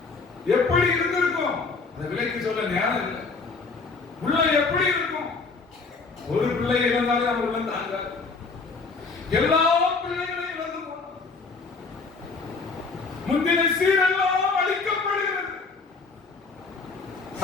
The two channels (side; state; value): right; quieter; 4.3 dB